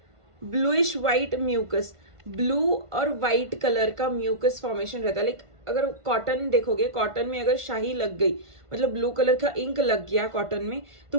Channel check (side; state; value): left; late; 1.5 ms